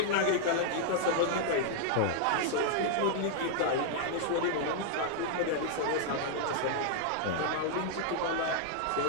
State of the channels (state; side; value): different; both; correlation -0.01